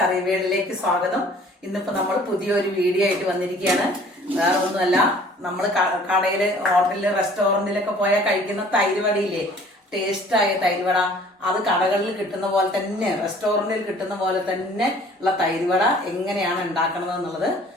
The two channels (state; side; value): normal; both; correlation 0.52